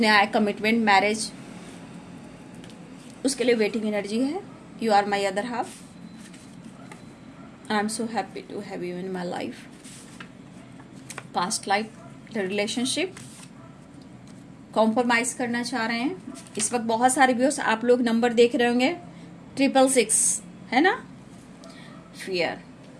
न्याय, कमिटमेंट, मैरिज, उसके लिए वेटिंग एनर्जी है। You are my other half, I am so happy to have you in my life. Past life relationship, compromise करना चाह रहे हैं। इस वक्त बहुत सारे व्यूअर्स आप लोग नंबर देख रहे होंगे, 666 है ना। फियर,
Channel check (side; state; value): both; identical; correlation 1.00